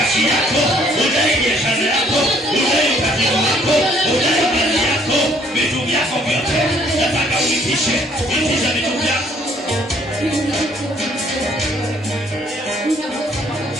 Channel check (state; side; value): normal; both; correlation 0.63